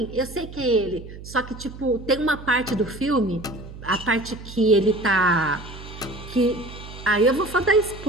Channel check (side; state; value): right; noise; hum, 14 dB below the sound